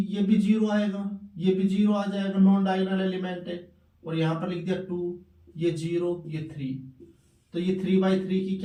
भी जीरो आएगा, ये भी जीरो आ जाएगा, नॉन डायगोनल एलिमेंट है। और यहाँ पर लिख दिया 2, ये 0 ये 3। तो ये 3x3 की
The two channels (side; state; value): both; identical; correlation 1.00